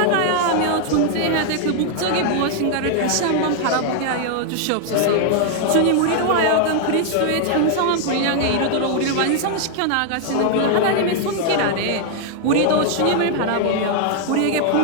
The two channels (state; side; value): different; both; correlation 0.00